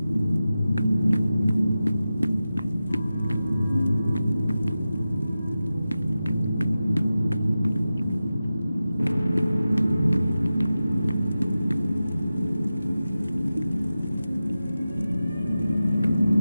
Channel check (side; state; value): both; inverted; correlation -0.93